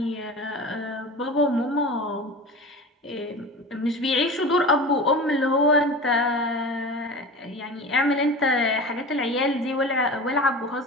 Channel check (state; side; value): normal; both; correlation 0.33